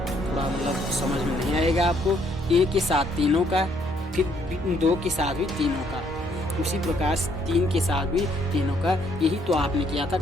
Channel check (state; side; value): normal; both; correlation 0.68